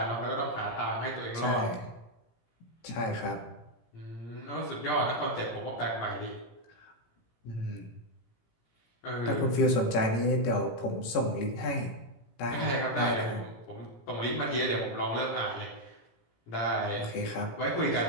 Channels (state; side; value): late; right; 18 ms